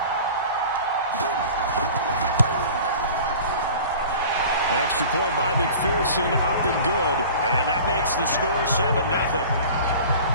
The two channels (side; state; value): both; inverted; correlation -0.41